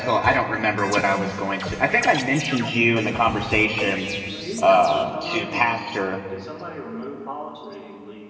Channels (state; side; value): identical; both; correlation 1.00